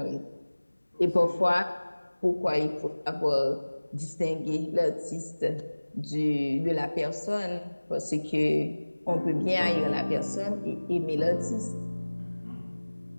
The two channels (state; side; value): inverted; both; correlation -1.00